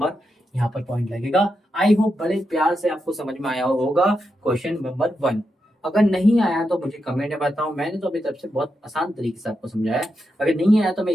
यहाँ पर पॉइंट लगेगा। आई होप बड़े प्यार से आपको समझ में आया होगा क्वेश्चन नंबर 1। अगर नहीं आया तो मुझे कमेंट में बताओ, मैंने तो अभी तरफ से बहुत आसान तरीके से आपको समझाया है, अगर नहीं आया तो मैं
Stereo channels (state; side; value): normal; both; correlation 0.85